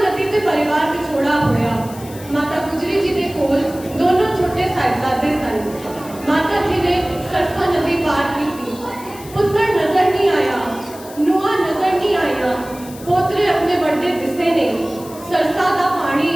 नदी ते परिवार विछोड़ा होया। माता गुजरी जी के कोल दोनों छोटे साहिबजादे सन। माता जी ने सरसा नदी पार की थी। पुत्र नजर नहीं आया, नुआ नजर नहीं आया, पोतरे अपने बड़े दिसे ने। सरसा दा पानी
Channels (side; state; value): left; noise; hiss, 18 dB below the sound